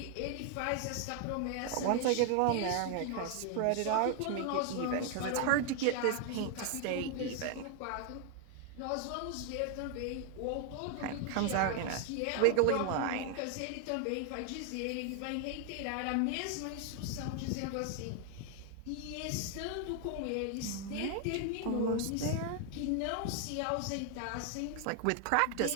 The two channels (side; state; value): both; different; correlation 0.00